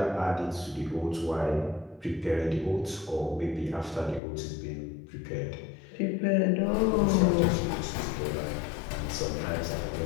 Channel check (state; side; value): drops out; right; at 4.2 s